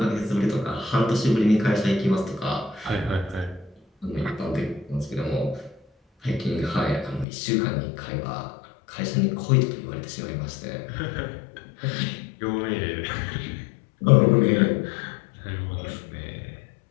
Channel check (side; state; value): right; drops out; at 7.2 s